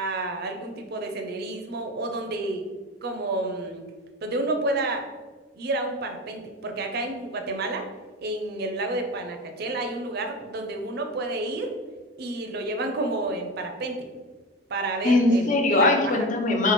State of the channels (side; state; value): both; normal; correlation 0.24